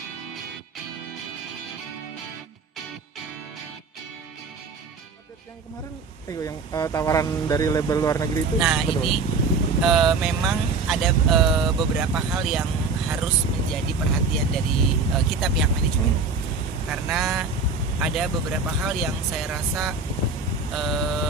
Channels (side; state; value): left; quieter; 4.3 dB